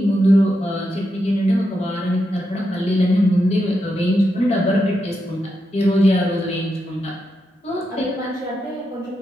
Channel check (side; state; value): both; normal; correlation 0.85